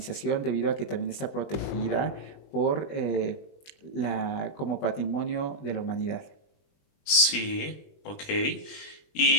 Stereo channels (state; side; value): late; right; 20 ms